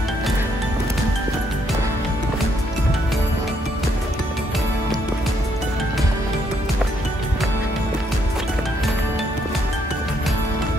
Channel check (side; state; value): both; normal; correlation 0.73